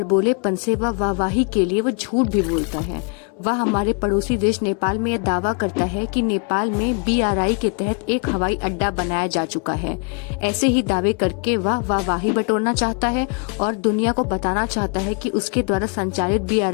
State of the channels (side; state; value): right; quieter; 37.7 dB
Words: से वह वाहवाही के लिए वो झूठ भी बोलता है। वह हमारे पड़ोसी देश नेपाल में यह दावा करता है कि नेपाल में BRI के तहत एक हवाई अड्डा बनाया जा चुका है। ऐसे ही दावे करके वह वाहवाही बटोरना चाहता है और दुनिया को बताना चाहता है कि उसके द्वारा संचालित